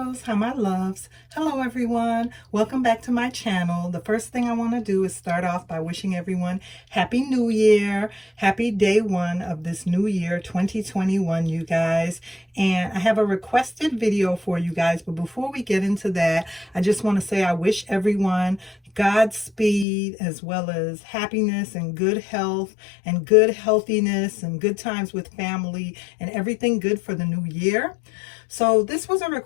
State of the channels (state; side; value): drops out; right; at 19.9 s